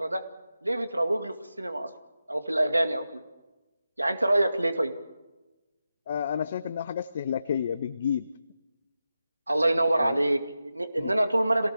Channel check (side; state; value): both; inverted; correlation -0.90